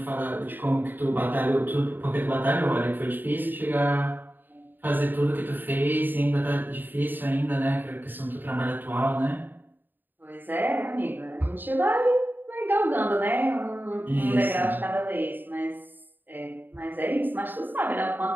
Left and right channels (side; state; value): left; late; 0.091 ms